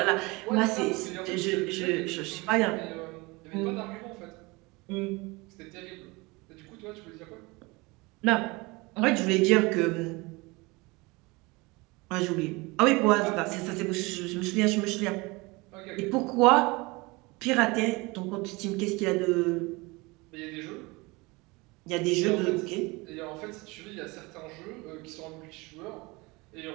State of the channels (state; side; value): quieter; left; 24.5 dB